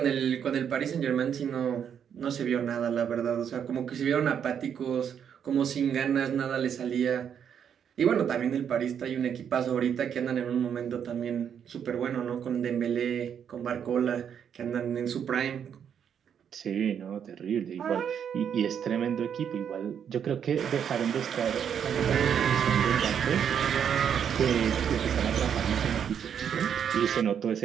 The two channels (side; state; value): left; quieter; 8.2 dB